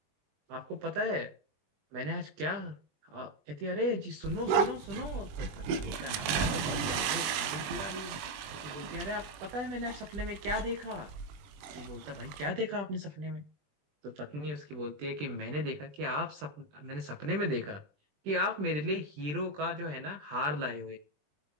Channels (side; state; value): left; late; 21 ms